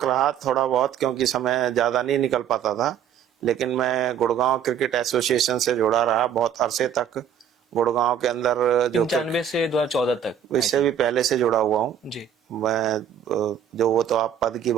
रहा थोड़ा बहुत, क्योंकि समय ज्यादा नहीं निकल पाता था, लेकिन मैं गुड़गांव क्रिकेट एसोसिएशन से जुड़ा रहा बहुत अरसे तक। गुड़गांव के अंदर जो 95 से 2014 तक, इससे भी पहले से जुड़ा हुआ हूँ जी। मैं, जो वो तो आप पद की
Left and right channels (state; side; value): quieter; left; 8.6 dB